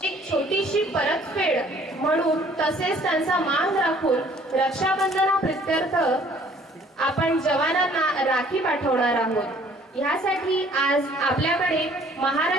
छोटीशी परतफेड म्हणून तसेच त्यांचा मान राखून रक्षाबंधनाप्रित्यर्थ आपण जवानांना राखी पाठवणार आहोत। यासाठी आज आपल्याकडे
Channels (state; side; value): normal; both; correlation 0.57